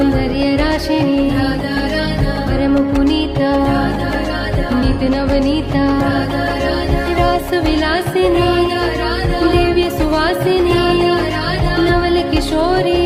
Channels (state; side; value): identical; both; correlation 1.00